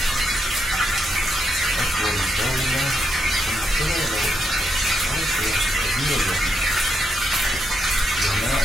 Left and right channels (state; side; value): normal; both; correlation 0.81